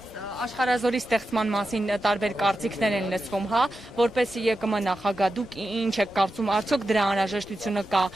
աշխարհազորի ստեղծման մասին տարբեր կարծիքներ են լսվում, հա, որպես ԵԿՄ նախագահ, դուք ինչ եք կարծում, արդյոք դրա անհրաժեշտությունը կա,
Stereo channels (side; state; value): both; normal; correlation 0.90